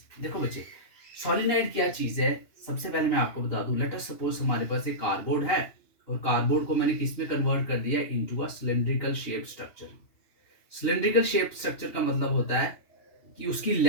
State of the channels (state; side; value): late; right; 2.7 ms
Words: देखो बच्चे, सॉलिनॉइड क्या चीज है. सबसे पहले मैं आपको बता दूं, लेट अस सपोज हमारे पास एक कार्डबोर्ड है और कार्डबोर्ड को मैंने किस में कन्वर्ट कर दिया, into a cylindrical shape structure. Cylindrical shape structure का मतलब होता है कि उसकी